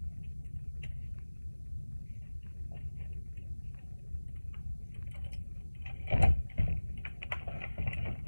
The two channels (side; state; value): both; inverted; correlation -1.00